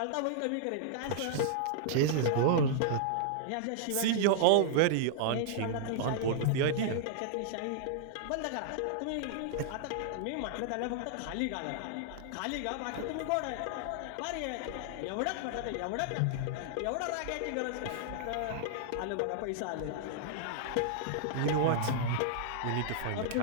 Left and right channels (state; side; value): different; both; correlation -0.01